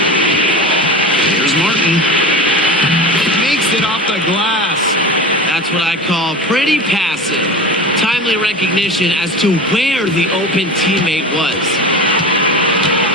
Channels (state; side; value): normal; both; correlation 0.30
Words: Here's Martin. Makes it off the glass. That's what I call pretty passing. Timely recognition as to where the open teammate was.